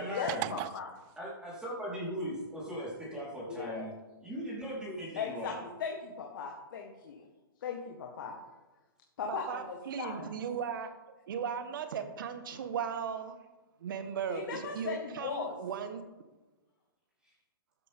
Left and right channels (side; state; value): both; normal; correlation -0.14